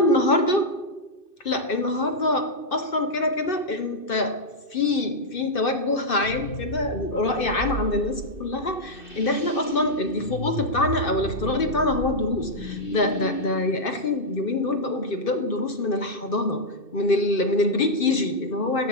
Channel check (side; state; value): right; late; 2.6 ms